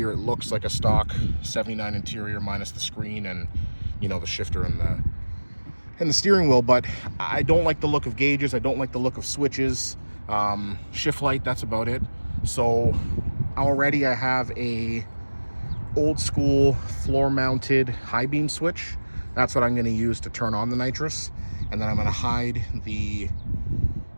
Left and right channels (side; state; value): both; inverted; correlation -1.00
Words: it looks like a stock 79 interior minus the screen and, the shifter and the steering wheel. But I don't like the look of gauges. I don't like the look of switches. Shift light, that's about it. So already I have a old school floor mounted high beam switch. That's what I'm going to use to turn on the nitrous, and then I'm going to hide the